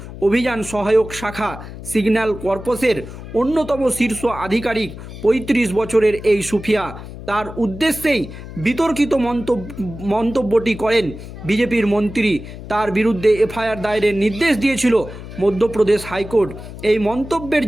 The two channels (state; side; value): noise; left; hum, 12 dB below the sound